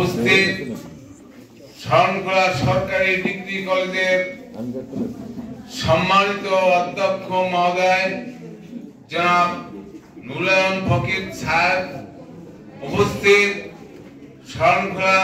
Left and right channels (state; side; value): identical; both; correlation 1.00